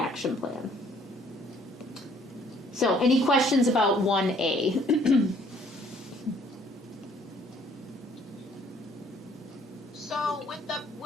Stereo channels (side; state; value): both; normal; correlation 0.60